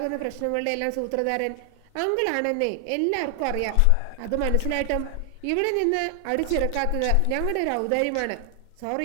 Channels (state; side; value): different; both; correlation 0.00